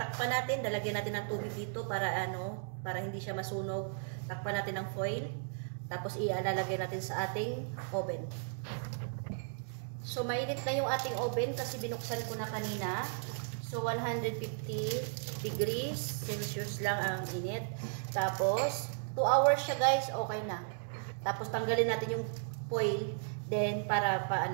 natin, lalagyan natin ng tubig dito para para hindi siya masunog. Takpan natin ng foil. Tapos ilalagay natin sa ating oven. So mainit na yung ating oven kasi binuksan ko na kanina. So 150 degrees Celsius lang ang init. Tapos 2 hours siya guys, okay na. Tapos tanggalin natin yung foil. Then, para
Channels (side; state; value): left; silent; digital silence